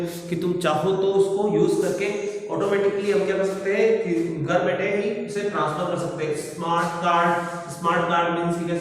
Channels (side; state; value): both; identical; correlation 1.00